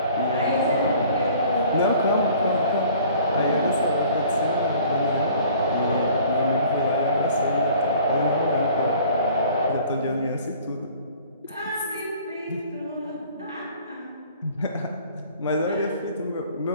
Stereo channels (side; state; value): both; inverted; correlation -0.51